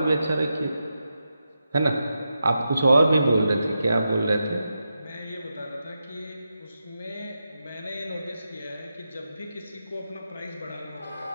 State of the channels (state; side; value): inverted; both; correlation -0.88